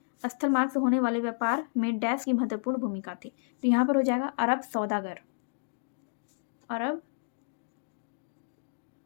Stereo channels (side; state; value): right; silent; digital silence